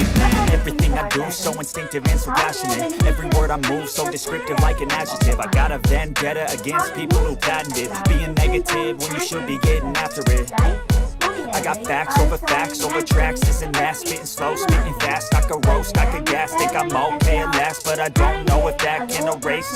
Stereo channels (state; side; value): identical; both; correlation 1.00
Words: Everything I do so instinctive and so passionate. Every word I move so descriptive like an adjective. I got a vendetta against people who patented being negative when you should be getting after it. I got facts over tracks, this and that, spitting slow, spitting fast. I could roast, I could gas, think I'm okay at last, but I don't know if that can